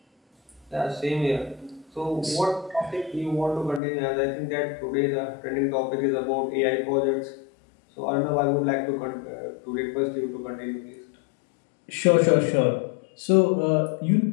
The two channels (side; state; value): right; drops out; at 3.8 s